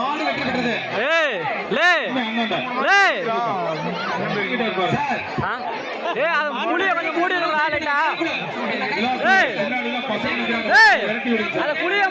மாடு வெற்றி பெற்றது. ஏய் லே அண்ணாண்ட ஏய் சார் ஏய் அது புளிய கொஞ்சம் மூடி விடுடா லைட்டா. ஏய் முன்னாடிலாம் பசங்க ஏய் விரட்டி விடுங்க. அத புளிய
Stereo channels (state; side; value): identical; both; correlation 1.00